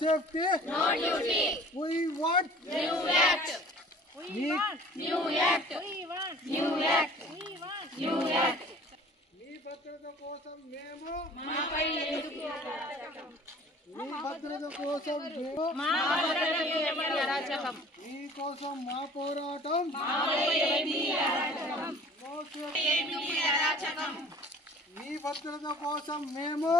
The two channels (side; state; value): both; normal; correlation 0.47